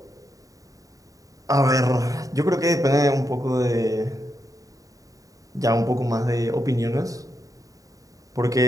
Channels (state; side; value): late; left; 0.16 ms